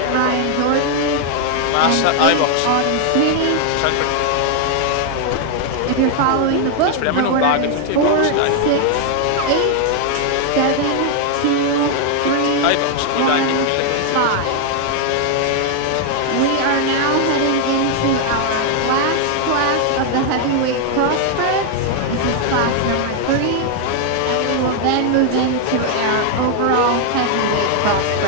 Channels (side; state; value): both; different; correlation 0.00